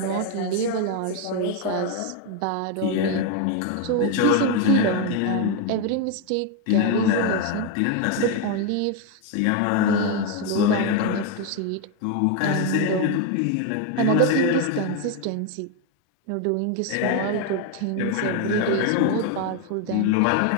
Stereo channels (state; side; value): different; both; correlation 0.02